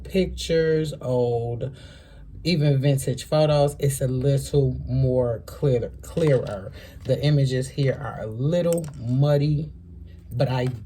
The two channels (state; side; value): identical; both; correlation 1.00